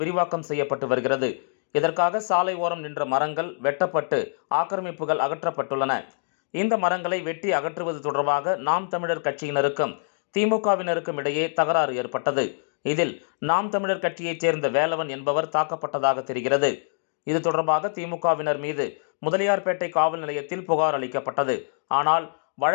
செய்யப்பட்டு வருகிறது. இதற்காக சாலை ஓரம் நின்ற மரங்கள் வெட்டப்பட்டு ஆக்கிரமிப்புகள் அகற்றப்பட்டுள்ளன. இந்த மரங்களை வெட்டி அகற்றுவது தொடர்பாக நாம் தமிழர் கட்சியினருக்கும் திமுகவினருக்கும் இடையே தகராறு ஏற்பட்டது. இதில் நாம் தமிழர் கட்சியைச் சேர்ந்த வேலவன் என்பவர் தாக்கப்பட்டதாக தெரிகிறது. இது தொடர்பாக திமுகவினர் மீது முதலியார்பேட்டை காவல் நிலையத்தில் புகார் அளிக்கப்பட்டது. ஆனால்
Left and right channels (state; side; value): silent; right; digital silence